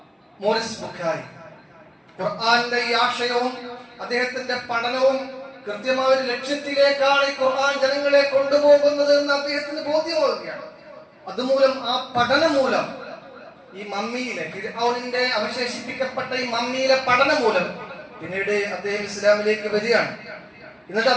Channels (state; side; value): identical; both; correlation 1.00